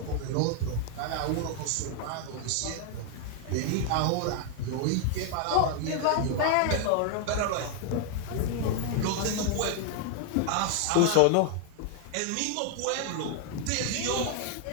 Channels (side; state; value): both; different; correlation 0.00